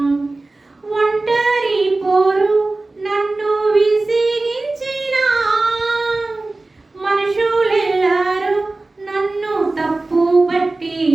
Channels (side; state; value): left; quieter; 3.2 dB